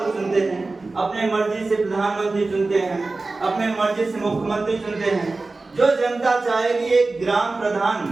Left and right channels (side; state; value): left; quieter; 3.5 dB